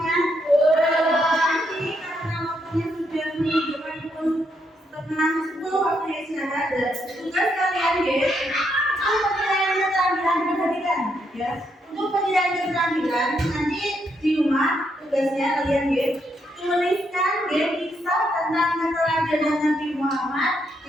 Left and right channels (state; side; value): normal; both; correlation 0.77